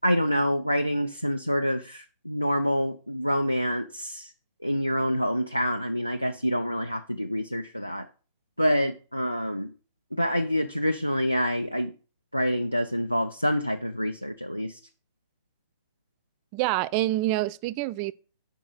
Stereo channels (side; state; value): both; inverted; correlation -0.83